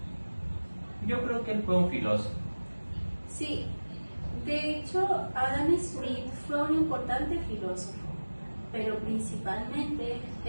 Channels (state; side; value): inverted; both; correlation -1.00